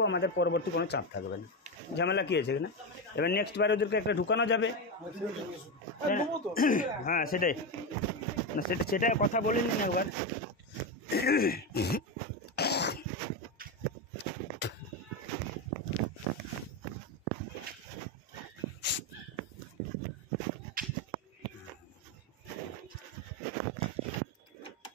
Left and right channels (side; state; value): both; normal; correlation 0.13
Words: আমাদের পরবর্তী কোনো চাপ থাকবে না। ঝামেলা কী আছে এখানে? এবার নেক্সট বার ওদেরকে একটা ঢুকানো যাবে। দেবো তো। হ্যাঁ সেটাই না, সেটা কথা বলে নিন একবার।